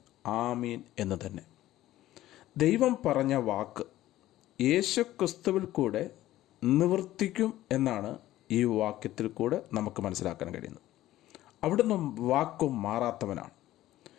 ആമീൻ എന്ന് തന്നെ. ദൈവം പറഞ്ഞ വാക്ക് യേശുക്രിസ്തുവിൽ കൂടെ നിവർത്തിക്കും എന്നാണ് ഈ വാക്യത്തിൽ കൂടെ നമുക്ക് മനസ്സിലാക്കാൻ കഴിയുന്നത്. അവിടുന്ന് വാക്കും മാറാത്തവനാണ്.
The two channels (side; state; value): right; quieter; 14.7 dB